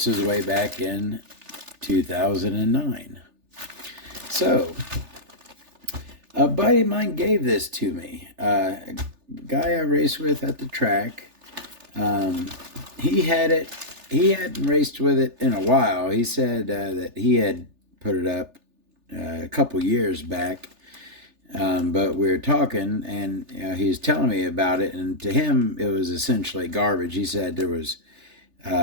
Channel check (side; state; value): left; late; 3.4 ms